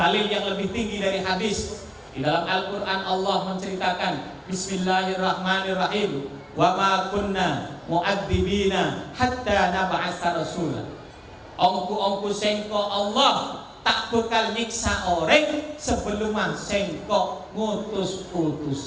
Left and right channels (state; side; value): identical; both; correlation 1.00